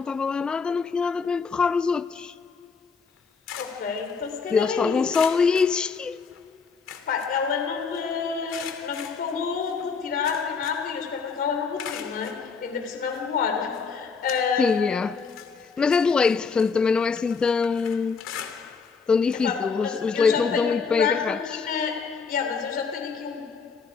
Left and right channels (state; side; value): quieter; right; 5.3 dB